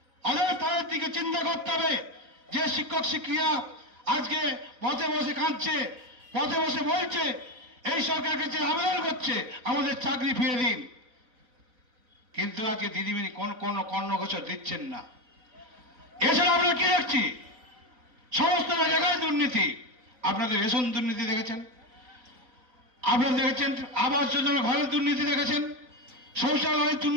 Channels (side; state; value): left; late; 4.0 ms